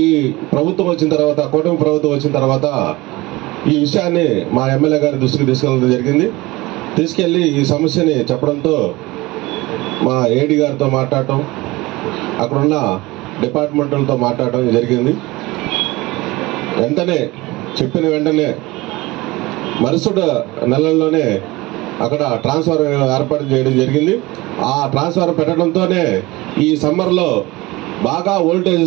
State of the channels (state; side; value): quieter; left; 21.1 dB